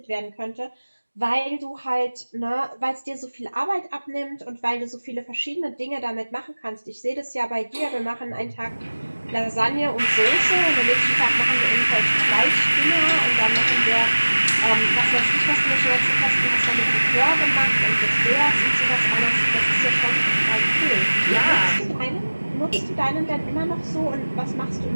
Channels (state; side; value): inverted; both; correlation -1.00